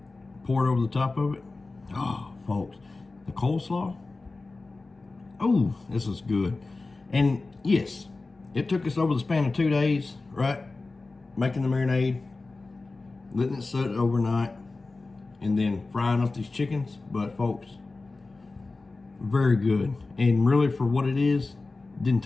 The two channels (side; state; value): right; quieter; 3.5 dB